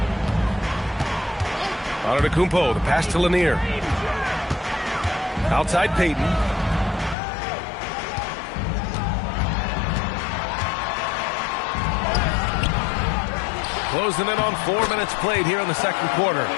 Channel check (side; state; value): right; drops out; at 7.2 s